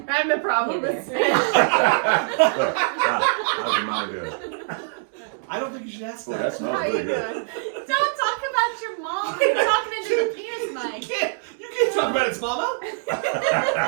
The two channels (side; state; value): left; silent; digital silence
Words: I'm the problem. Hey It's there. me. How's your mama doing? I don't think you should ask Well, that. that smells How really you good. doing? don't talk about your mom. You're talking into the penis, Mike. You can't talk about its mama.